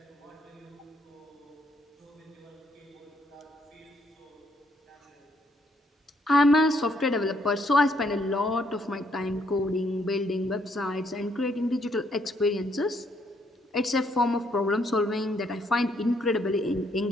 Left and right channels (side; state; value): both; normal; correlation 0.71